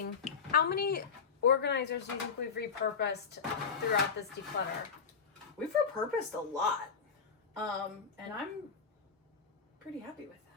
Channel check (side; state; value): right; quieter; 5.8 dB